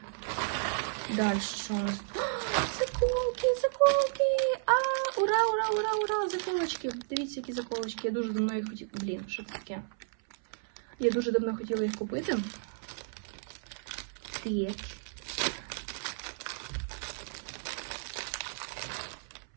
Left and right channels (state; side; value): silent; left; 56 dB below the other